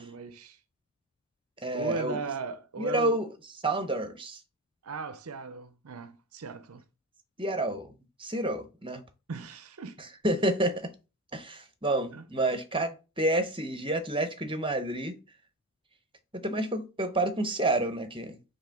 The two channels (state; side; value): normal; both; correlation 0.22